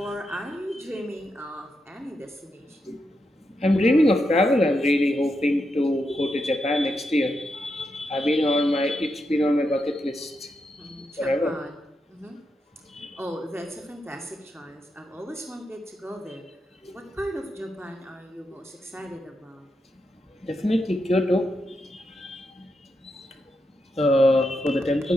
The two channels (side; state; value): both; normal; correlation 0.84